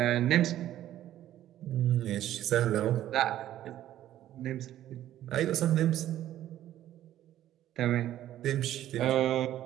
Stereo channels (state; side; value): quieter; left; 12.6 dB